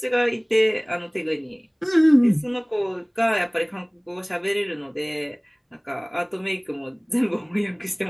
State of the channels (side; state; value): both; identical; correlation 1.00